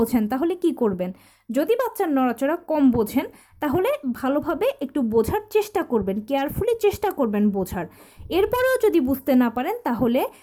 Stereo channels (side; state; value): both; identical; correlation 1.00